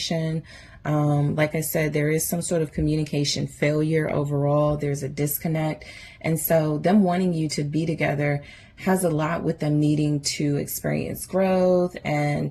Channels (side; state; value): both; identical; correlation 1.00